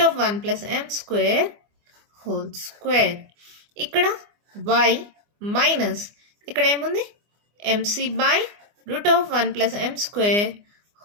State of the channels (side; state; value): left; late; 24 ms